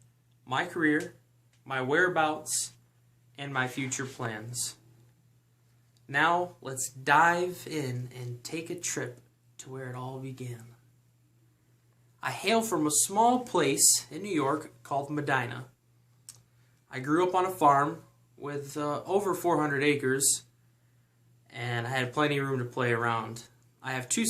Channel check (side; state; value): both; identical; correlation 1.00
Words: my career, my whereabouts, and my future plans. Now let's dive in and take a trip to where it all began. I hail from a small place in New York called Medina. I grew up on a farm with over 400 acres, and I had plenty of room to play around. I have two